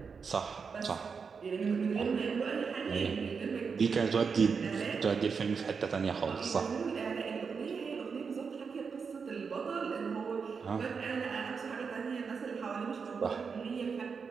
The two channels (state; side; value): quieter; left; 5.6 dB